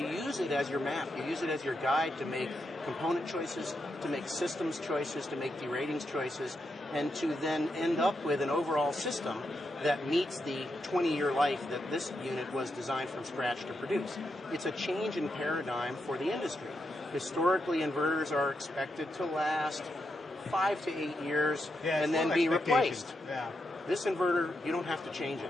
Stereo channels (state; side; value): normal; both; correlation 0.84